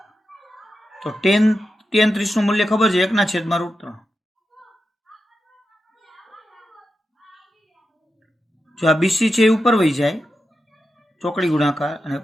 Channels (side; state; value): both; normal; correlation 0.89